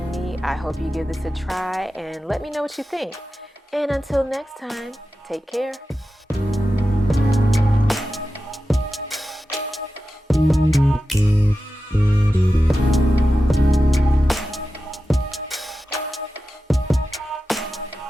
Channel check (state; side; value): normal; both; correlation 0.93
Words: me. I hope you give this a try and let me know what you think. And until next time, take care.